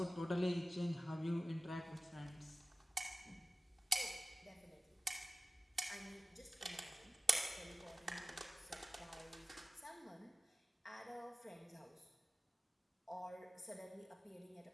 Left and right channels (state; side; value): normal; both; correlation 0.95